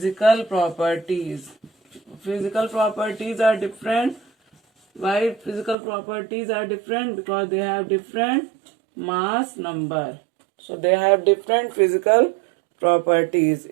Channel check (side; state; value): left; drops out; at 5.8 s